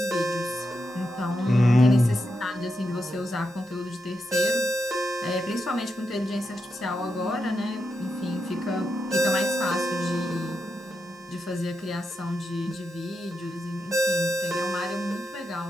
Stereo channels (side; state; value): both; normal; correlation 0.86